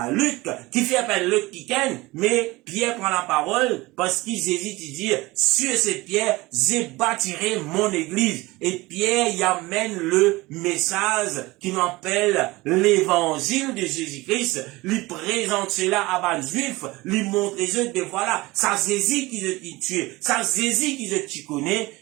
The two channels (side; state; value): left; quieter; 21.0 dB